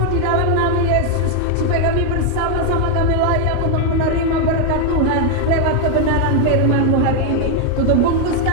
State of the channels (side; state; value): both; different; correlation 0.01